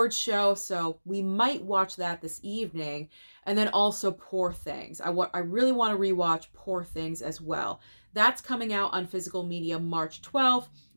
show, so we might watch that this evening. And then also Poor Things. I really want to rewatch Poor Things as well. That's coming out on physical media March 12th,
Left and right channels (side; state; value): both; inverted; correlation -1.00